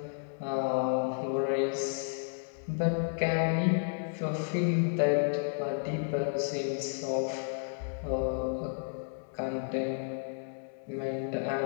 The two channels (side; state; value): right; silent; 56 dB below the other